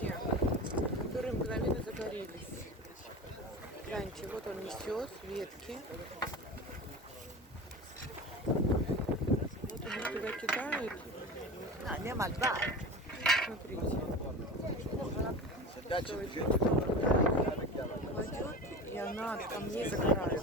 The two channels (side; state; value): both; normal; correlation 0.31